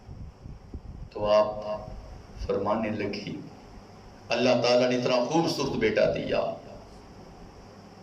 تو آپ فرمانے لگی اللہ تعالیٰ نے اتنا خوبصورت بیٹا دیا,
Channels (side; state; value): both; identical; correlation 1.00